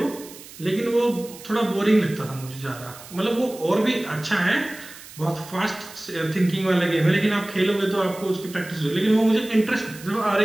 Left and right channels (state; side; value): noise; right; hiss, 17 dB below the sound